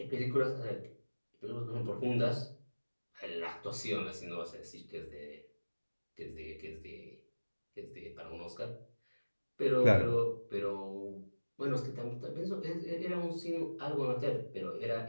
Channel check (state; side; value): inverted; both; correlation -1.00